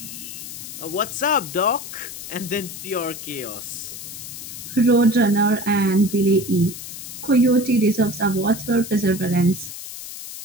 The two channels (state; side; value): noise; left; hiss, 10 dB below the sound